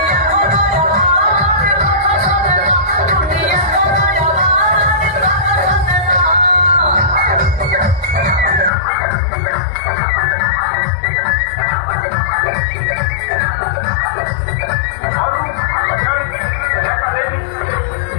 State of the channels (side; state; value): right; drops out; at 8.7 s